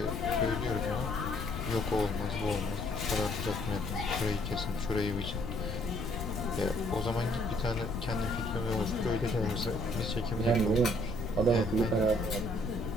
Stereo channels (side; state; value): left; noise; rumble, 5 dB below the sound